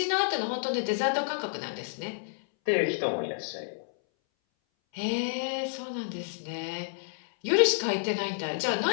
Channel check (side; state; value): right; silent; 58 dB below the other